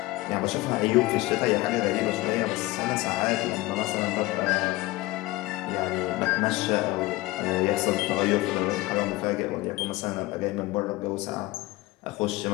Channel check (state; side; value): quieter; right; 19.6 dB